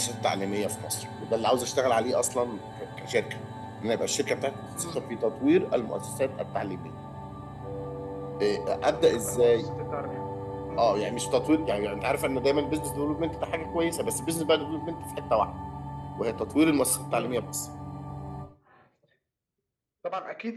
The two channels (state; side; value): identical; both; correlation 1.00